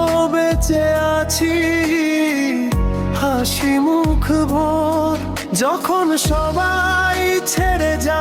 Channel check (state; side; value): identical; both; correlation 1.00